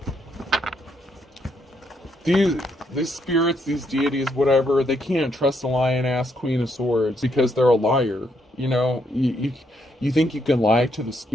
These spirits, these deities, whatever, they can't trust a lion-ass Queen of Swords because they're a liar. You think you can lie to the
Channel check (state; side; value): normal; both; correlation 0.75